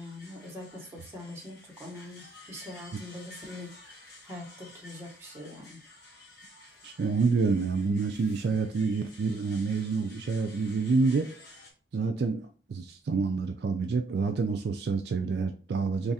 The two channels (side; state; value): left; quieter; 3.9 dB